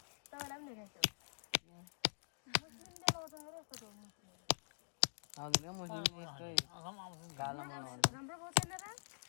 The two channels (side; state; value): right; silent; digital silence